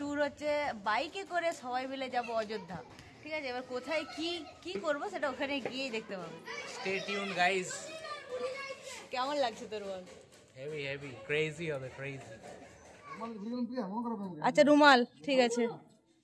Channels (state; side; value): identical; both; correlation 1.00